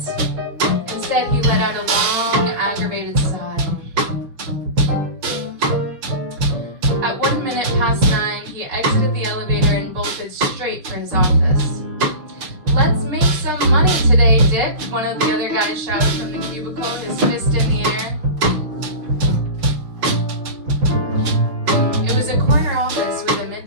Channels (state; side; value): late; left; 6.2 ms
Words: Instead, he let out a long, aggravated sigh. At 1 minute past 9, he exited the elevator and bolted straight for his office. "Let's make some money today, Dick," one of the other guys shouted from the cubicle, his fist in the air. It was a corner office with a